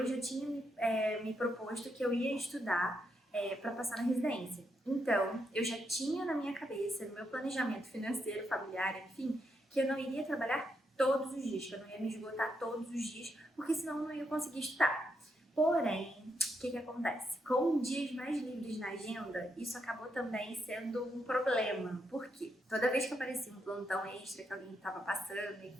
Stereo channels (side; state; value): both; normal; correlation 0.80